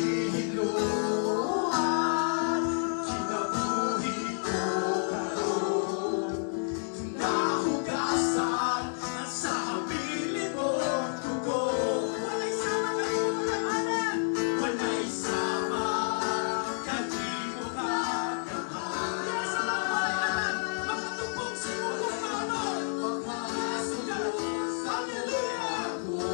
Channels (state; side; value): silent; right; 58 dB below the other